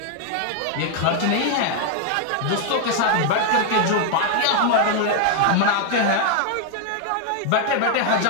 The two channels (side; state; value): both; different; correlation 0.00